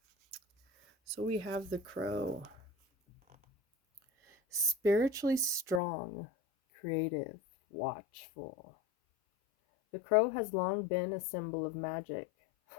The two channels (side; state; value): right; drops out; at 5.8 s